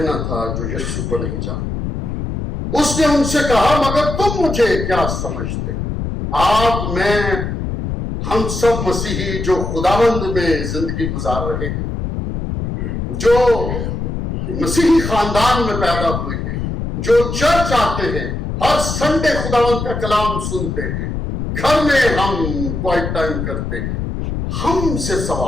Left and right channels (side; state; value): left; noise; rumble, 4 dB below the sound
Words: تھا جو یسوع کو نہیں جانتے۔ اس نے ان سے کہا، مگر تم مجھے کیا سمجھتے ہو؟ آپ، میں، ہم سب مسیحی جو خداوند میں زندگی گزار رہے ہیں، جو مسیحی خاندان میں پیدا ہوئے ہیں، جو چرچ آتے ہیں، ہر سنڈے خداوند کا کلام سنتے ہیں، گھر میں ہم کوائٹ ٹائم کرتے ہیں، ہم سے